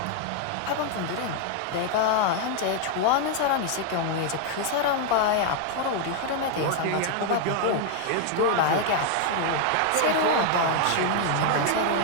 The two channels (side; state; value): both; different; correlation 0.00